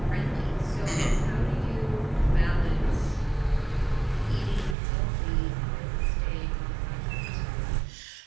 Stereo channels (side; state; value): left; drops out; at 4.8 s